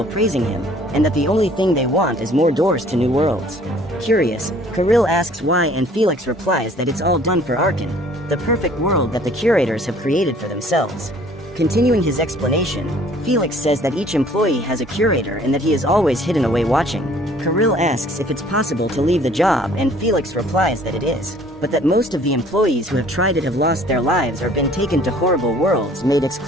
praising him, and that the only thing they want is more doors to new worlds. Curious, Kirill asks why and Felix replies that it's all done for Arkan, the perfect world that the curators have created for themselves. Continuing his explanation, Felix says that each employee has a curator and that he is always hidden away watching. Kirill asks if it's possible to leave the job and Felix replies that it is, but that most of the employees who have tried it have lost their lives or been taken to horrible worlds made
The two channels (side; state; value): both; normal; correlation 0.55